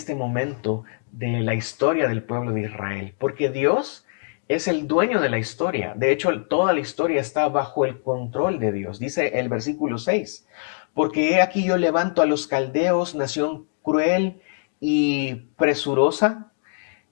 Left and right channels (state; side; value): silent; right; digital silence